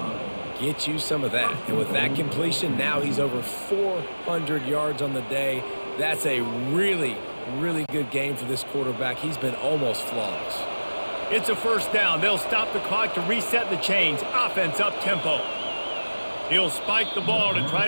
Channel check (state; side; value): inverted; both; correlation -1.00